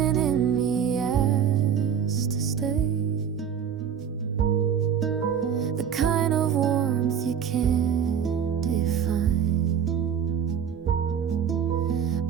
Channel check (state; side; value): quieter; left; 8.0 dB